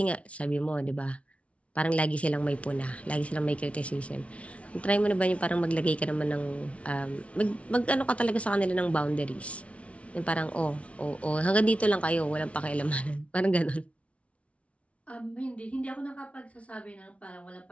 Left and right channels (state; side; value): late; right; 0.063 ms